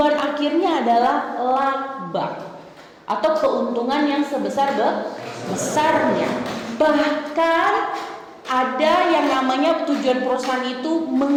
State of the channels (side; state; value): both; identical; correlation 1.00